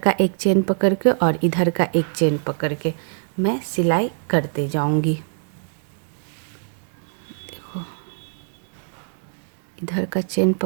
एक चेन पकड़ के और इधर का एक चेन पकड़ के मैं सिलाई करते जाऊंगी। इधर का चेन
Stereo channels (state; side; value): silent; left; digital silence